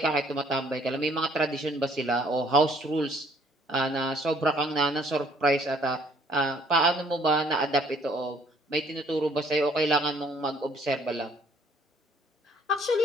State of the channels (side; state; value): both; normal; correlation 0.61